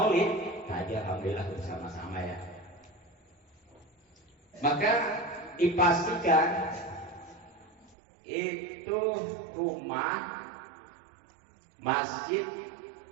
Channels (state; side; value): drops out; left; at 8.0 s